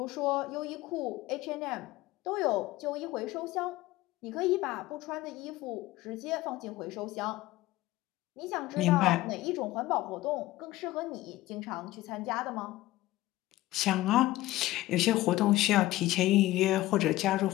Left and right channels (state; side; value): quieter; right; 17.0 dB